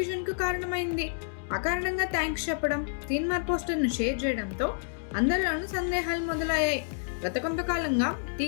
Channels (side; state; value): right; silent; digital silence